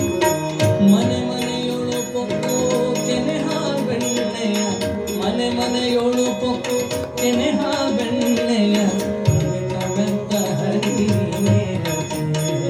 ಮನೆ ಮನೆಯೊಳು ಪೊಕ್ಕು ಕೆನೆಹ ಬೆಣ್ಣೆಯ ಮನೆ ಮನೆಯೊಳು ಪೊಕ್ಕು ಕೆನೆಹ ಬೆಣ್ಣೆಯ ಬೆತ್ತ ಬೆತ್ತ ಹರಿ ನೀನೇ ಗತಿ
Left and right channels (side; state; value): both; identical; correlation 1.00